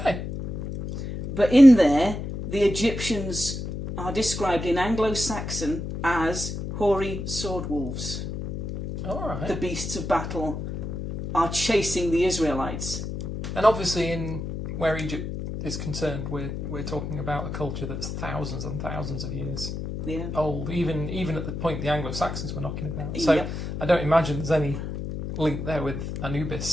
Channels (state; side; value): noise; left; hum, 6 dB below the sound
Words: But in there, the Egyptians are described in Anglo-Saxon as hoary sword wolves. All right. The beasts of battle are chasing the Israelites. And obviously, in where Egypt is concerned, we're talking about a culture that's thousands and thousands of years old, even at the point the Anglo-Saxons were knocking about. So I don't imagine there's any link there with